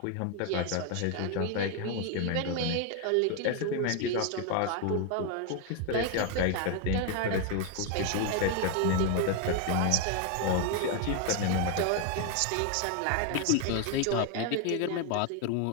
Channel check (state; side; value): different; both; correlation 0.01